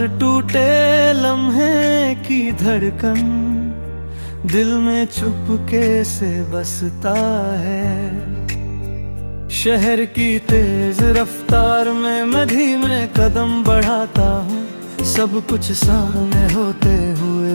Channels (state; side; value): inverted; both; correlation -1.00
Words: टूटे लम्हे की धड़कन दिल में चुपके से बसता है। शहर की तेज रफ्तार में मैं धीमे कदम बढ़ाता हूँ, सब कुछ सामने होते